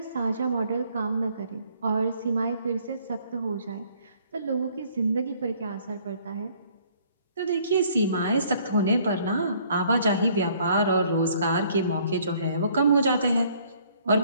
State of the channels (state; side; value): inverted; both; correlation -0.61